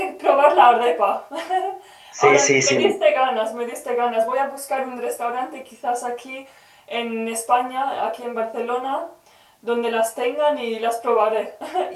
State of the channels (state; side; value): identical; both; correlation 1.00